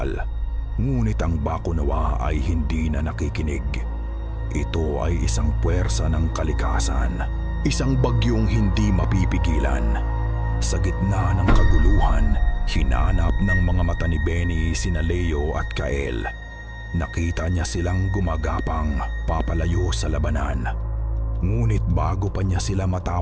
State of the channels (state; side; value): identical; both; correlation 1.00